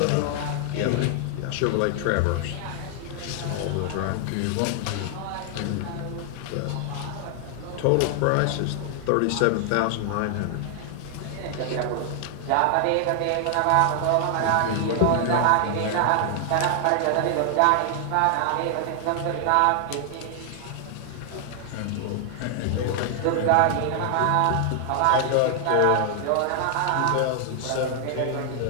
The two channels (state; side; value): different; both; correlation 0.00